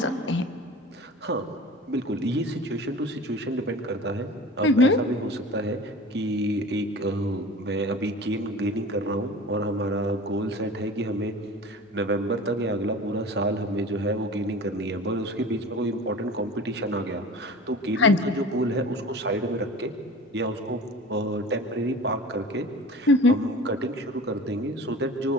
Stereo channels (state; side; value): normal; both; correlation 0.38